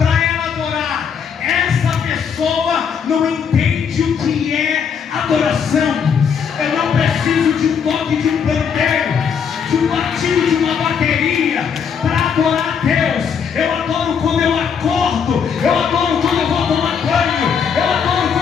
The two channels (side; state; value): right; quieter; 6.9 dB